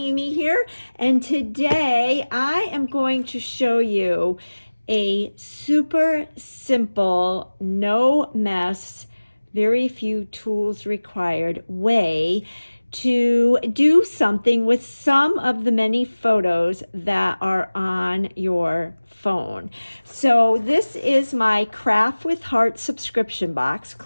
here, and today I am going to show you a super simple, no mess, very few tools required way to do something with some of the many photos that are on your phone. So this is my Craft with Heart subscription box.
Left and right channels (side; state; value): both; inverted; correlation -1.00